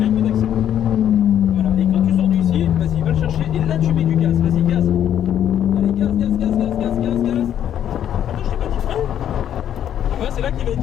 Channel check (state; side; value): quieter; right; 10.2 dB